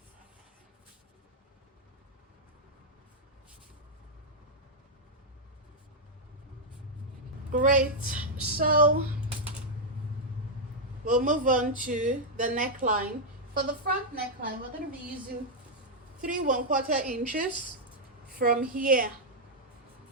Great. So we'll move on to the neckline. For the front neckline, we're going to be using 3 1/4 inches from here,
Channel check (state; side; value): normal; both; correlation -0.03